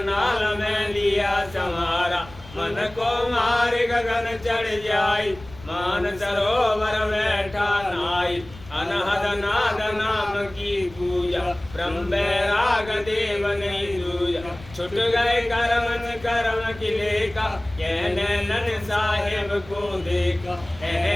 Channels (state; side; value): noise; left; rumble, 19 dB below the sound